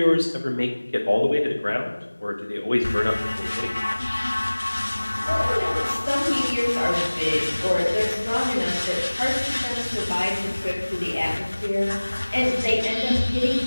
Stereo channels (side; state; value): both; inverted; correlation -1.00